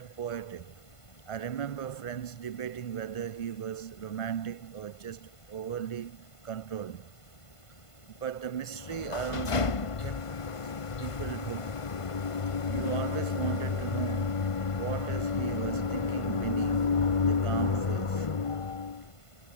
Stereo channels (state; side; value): late; right; 1.5 ms